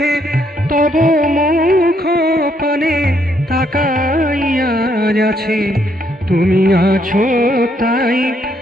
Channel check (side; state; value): both; normal; correlation 0.72